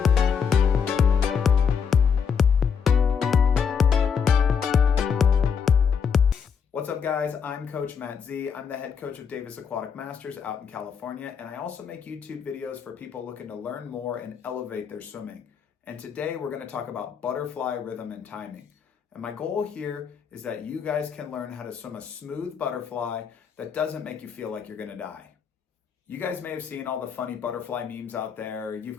What's up guys, I'm CoachMattZ. I'm the head coach of Davis Aquatic Masters out in California, and I also make YouTube videos for people looking to learn more and elevate their swimming. And today we're gonna talk about butterfly rhythm and timing. And my goal here is that you guys can learn how to swim a smooth butterfly that doesn't make you feel like you're gonna die. You guys may have seen all the funny butterfly memes out there. You've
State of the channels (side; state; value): right; quieter; 6.7 dB